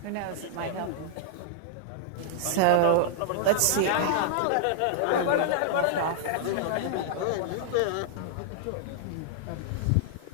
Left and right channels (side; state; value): both; different; correlation -0.01